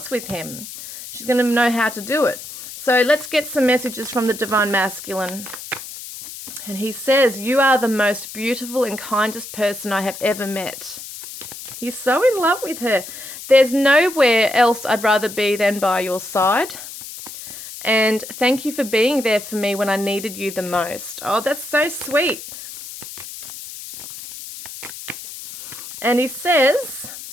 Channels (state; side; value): noise; left; hiss, 12 dB below the sound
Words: with him. She's going to know how to do it. So let's get some messages from the Divine Masculine. And he says, you are the most beautiful and kindest person I have ever met. He's so in love with her. There's nowhere else I'd rather be than by your side. And thank you for being there for me when I needed you the most. Oh, that's so sweet. And he says,